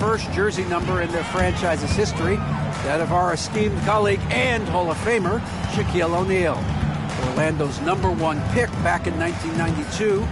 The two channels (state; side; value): identical; both; correlation 1.00